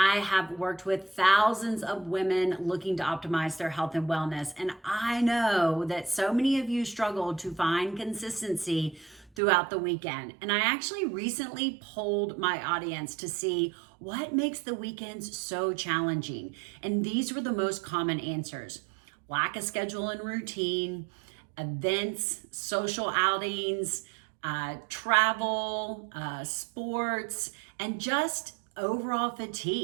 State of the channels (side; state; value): left; drops out; at 9.4 s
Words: have worked with thousands of women looking to optimize their health and wellness. And I know that so many of you struggle to find consistency throughout the weekend. And I actually recently polled my audience to see what makes the weekends so challenging. And these were the most common answers: lack of schedule and routine, events, social outings, travel, sports, and just overall